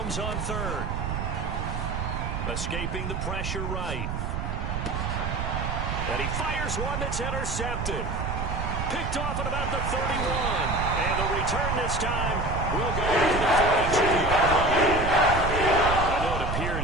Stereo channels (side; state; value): right; noise; rumble, 3 dB below the sound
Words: on 3rd. Escaping the pressure right. And he fires one that's intercepted. Picked off at about the 31. And the return this time will go to the 42-yard line. I know it